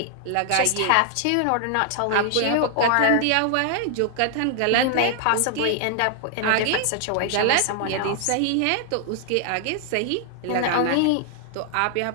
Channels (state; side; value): different; both; correlation 0.00